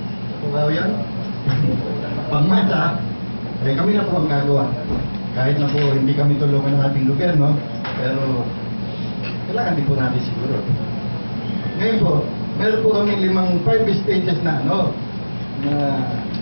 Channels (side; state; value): both; inverted; correlation -1.00